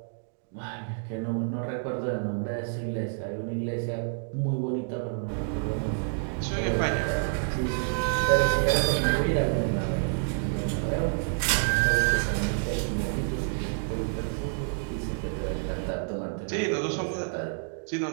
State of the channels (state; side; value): silent; left; digital silence